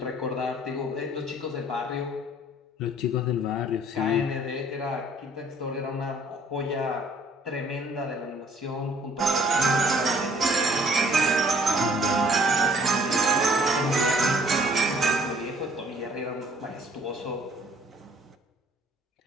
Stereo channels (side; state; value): both; normal; correlation 0.58